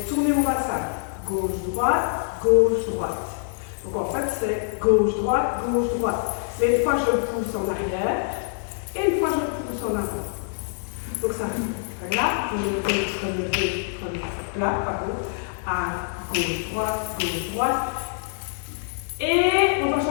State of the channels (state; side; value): silent; right; digital silence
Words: tourner mon bassin. Gauche, droite. Donc en fait c'est gauche, droite. Mais une fois je le pousse en arrière et une fois je le pousse en avant. Donc ça fait plat, relevé, relevé, relevé, plat, pardon, à gauche, droite. Et on va